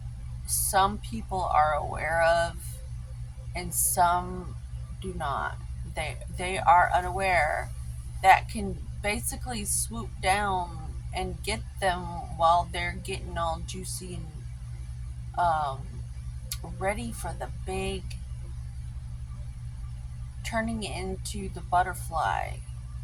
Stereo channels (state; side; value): identical; both; correlation 1.00